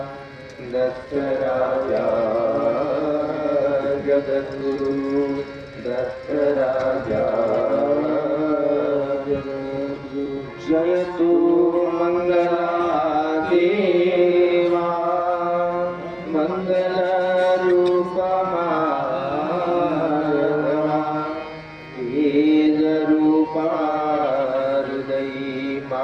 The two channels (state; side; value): identical; both; correlation 1.00